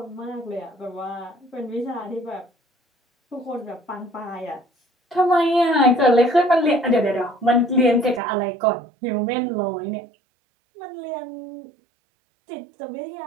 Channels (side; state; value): left; drops out; at 8.2 s